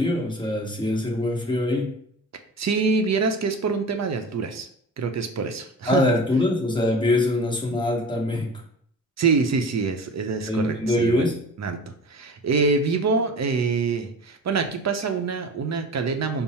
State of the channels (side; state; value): both; normal; correlation 0.36